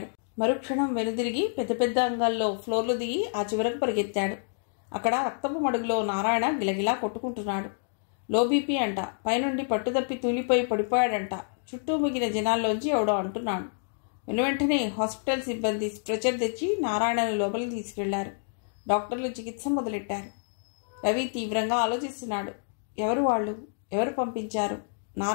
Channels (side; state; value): right; silent; digital silence